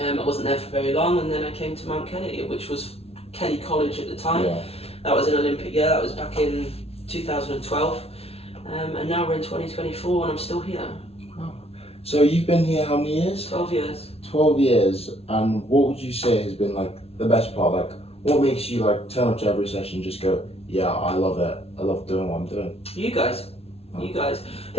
wasn't there for very long, and then I came to Mount Kelly, which was Kelly College at the time. That was an Olympic year. That was back in 2012, and now we're in 2024 and I'm still here. Oh. So you've been here how many years? 12 years. 12 years, and what would you say has been the best part? What makes you turn up to every session and just go, yeah, I love it, I love doing what I'm doing? You guys. I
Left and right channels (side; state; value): right; late; 0.29 ms